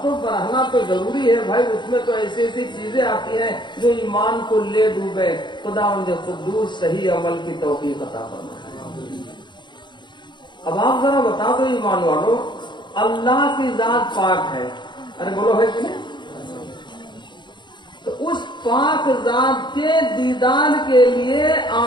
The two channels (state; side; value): late; right; 0.22 ms